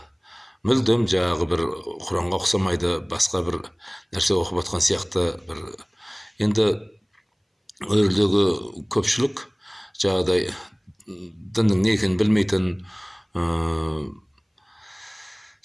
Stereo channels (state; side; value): identical; both; correlation 1.00